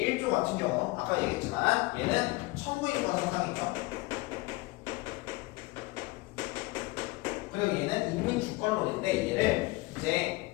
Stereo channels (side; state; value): right; quieter; 22.1 dB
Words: 같은 경우 아까 얘기했지만 얘는 천부인권 사상이죠. 그리고 얘는 인민주권론인데 얘를